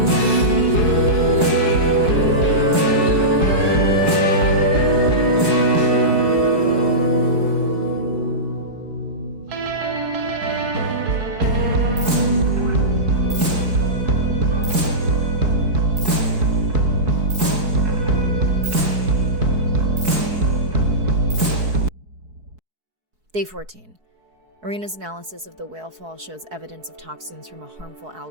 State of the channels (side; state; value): left; late; 4.7 ms